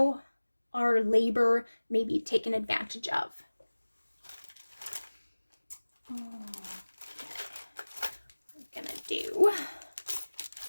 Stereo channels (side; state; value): both; inverted; correlation -1.00